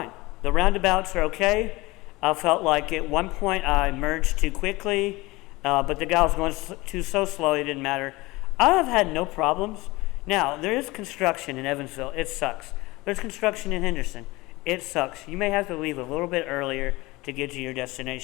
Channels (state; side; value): quieter; right; 21.5 dB